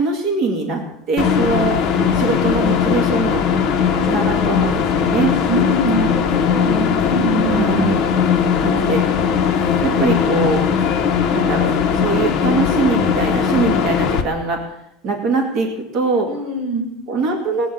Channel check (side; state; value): right; quieter; 3.1 dB